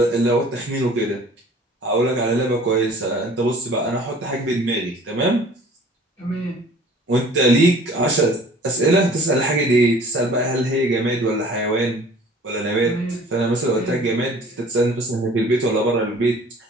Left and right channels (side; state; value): both; normal; correlation 0.49